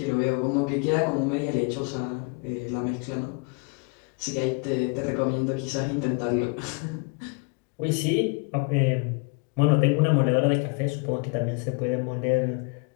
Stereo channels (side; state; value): right; quieter; 32.8 dB